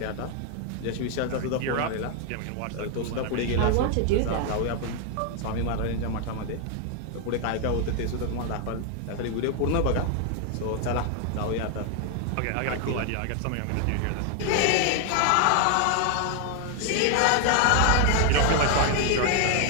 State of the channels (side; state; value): both; different; correlation 0.00